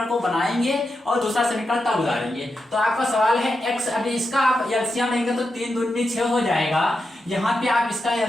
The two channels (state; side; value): normal; both; correlation 0.87